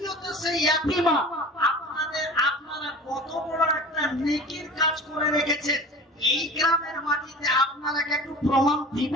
সে ইয়াতীমা। আপনারা কত বড় একটা নেকির কাজ করে রেখেছেন। এই গ্রামের মাটিতে আপনারা একটু প্রমাণ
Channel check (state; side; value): normal; both; correlation 0.38